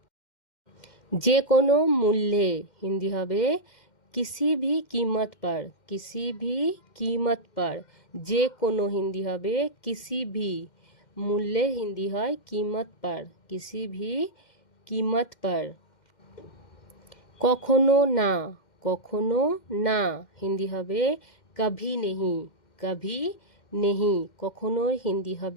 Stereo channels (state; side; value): late; right; 2.1 ms